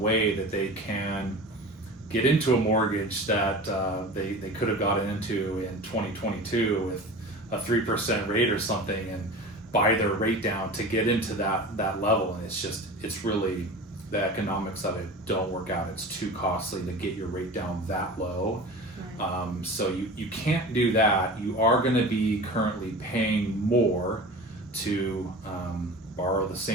that they can get into a mortgage that they could have gotten into in 2022 with a 3% rate or something, and buy their rate down to get into that level. And it's really, the economics of it don't work out. It's too costly to get your rate down that low. So you can't do that. You are going to be currently paying more to borrow the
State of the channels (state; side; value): normal; both; correlation 0.35